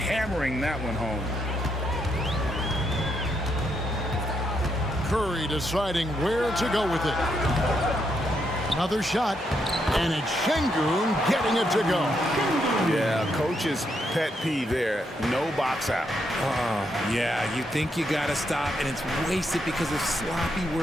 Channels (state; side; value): normal; both; correlation 0.78